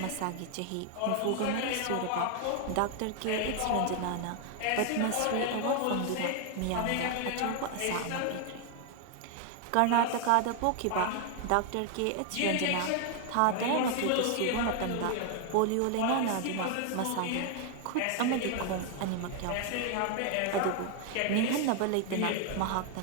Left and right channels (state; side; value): different; both; correlation 0.00